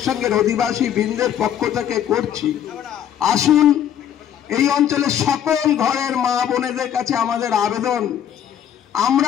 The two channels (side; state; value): right; quieter; 9.7 dB